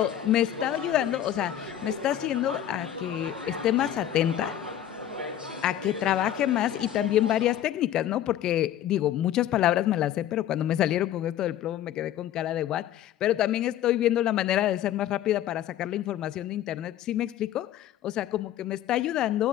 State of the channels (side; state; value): right; quieter; 11.5 dB